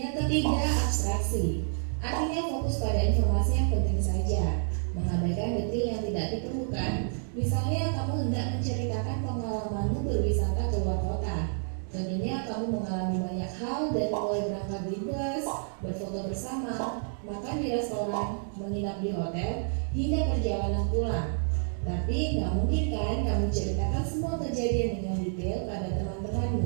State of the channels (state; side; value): silent; left; digital silence